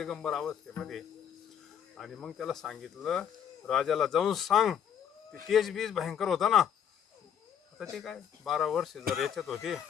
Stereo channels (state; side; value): quieter; right; 8.5 dB